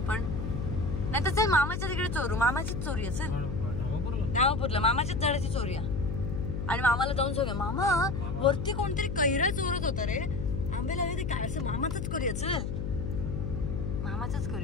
पण नाही तर चल मामाच्या तिकडे चोरू. मामाचीच चोरी आहे. चल धामापूरला मामाच्याच झाडाची चोरी आहे. आणि मामाला जाऊन सांगा, मामा वरती कोणतरी कैरा चोरत होता रे, आंबे लावे ते काय असं. मामाचंच करूया. चल मामाचंच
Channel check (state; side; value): noise; left; hum, 3 dB below the sound